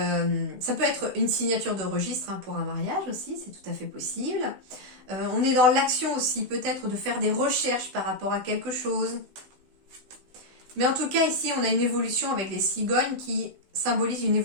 peut être une signature de registre pour un mariage aussi, c'est tout à fait possible. On est dans l'action aussi, peut-être de faire des recherches par rapport à quelque chose. Mais en tout cas, ici, on a une évolution avec les cigognes qui symbolise une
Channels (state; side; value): late; left; 16 ms